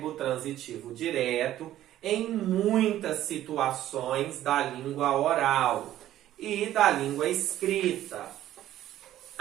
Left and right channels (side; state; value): left; quieter; 13.0 dB